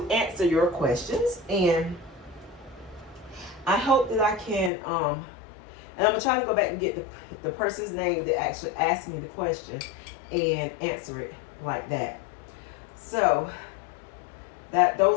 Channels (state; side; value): drops out; right; at 4.7 s